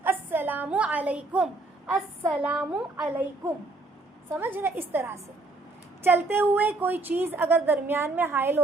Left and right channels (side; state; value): left; quieter; 3.1 dB